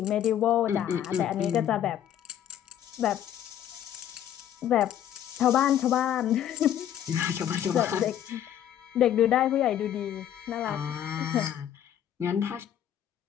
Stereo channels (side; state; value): right; quieter; 10.5 dB